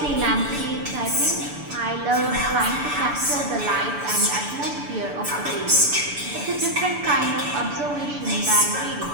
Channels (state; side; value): late; left; 6.9 ms